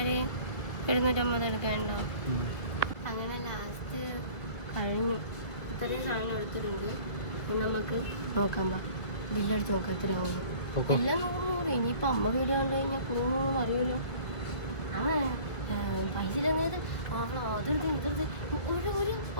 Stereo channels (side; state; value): right; late; 1.5 ms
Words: 250 എടുക്കണ്ടോ? അങ്ങനെ ലാസ്റ്റ് കഴിഞ്ഞു. ഇത്രയും സാധനം എടുത്തിട്ടുണ്ട്. നമുക്ക് നോക്കാം. ബില്ലടിച്ച് നോക്കാം എത്രയാവും. എല്ലാം 100. ഇനിയിപ്പോൾ അമ്മ വീട് കണ്ടു കഴിഞ്ഞാൽ കൂടുന്നു അറിയുമല്ലോ. പൈസ ഇല്ലെന്നത് അതെടുത്ത് ഇതെടുത്ത്